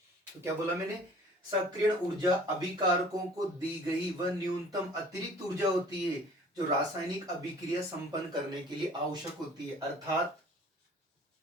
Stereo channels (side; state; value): both; normal; correlation 0.50